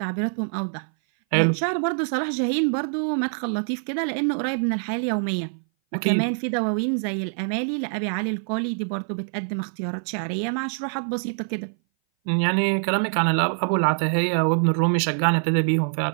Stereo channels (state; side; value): silent; left; 59 dB below the other